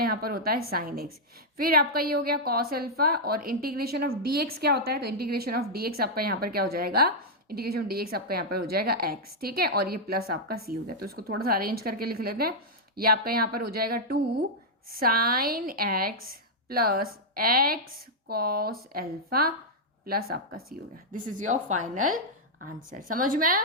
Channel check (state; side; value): normal; both; correlation -0.05